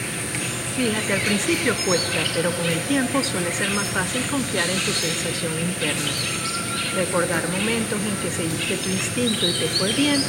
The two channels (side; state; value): both; identical; correlation 1.00